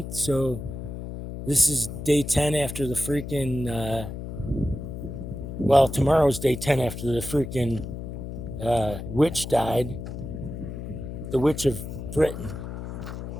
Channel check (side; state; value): left; noise; hum, 8 dB below the sound